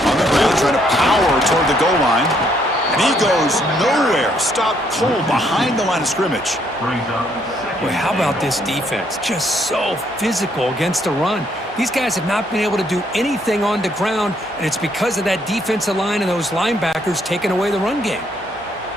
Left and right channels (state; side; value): normal; both; correlation 0.70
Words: the ground, trying to power toward the goal line. And he goes nowhere. Stopped cold behind the line of scrimmage. Boy, how about this defense? Just so physical against the run. These guys have not been able to do anything on the ground, and it's because of that defensive line and those linebackers taking away the run game.